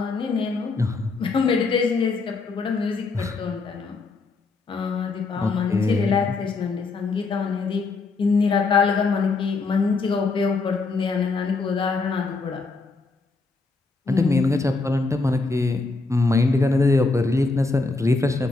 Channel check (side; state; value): right; quieter; 3.9 dB